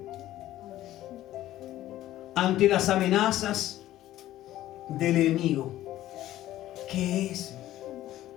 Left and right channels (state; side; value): quieter; right; 14.2 dB